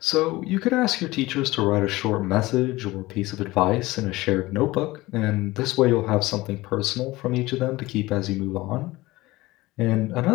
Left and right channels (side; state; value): right; quieter; 19.6 dB